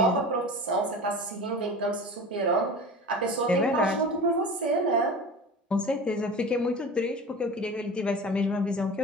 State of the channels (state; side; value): normal; both; correlation 0.34